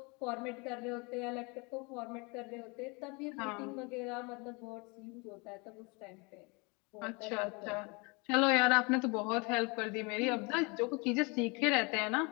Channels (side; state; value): right; quieter; 29.6 dB